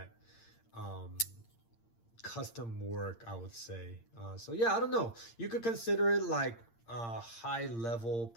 custom work, I would say. So yeah, I don't know. You could consider it like high level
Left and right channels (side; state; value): right; late; 8.7 ms